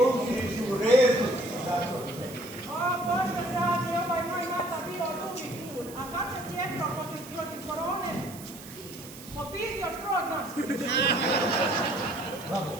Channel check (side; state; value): right; noise; hiss, 16 dB below the sound